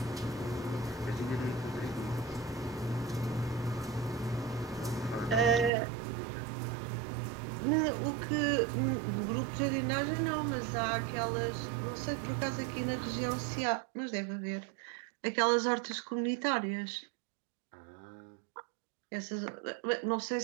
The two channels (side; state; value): left; drops out; at 5.7 s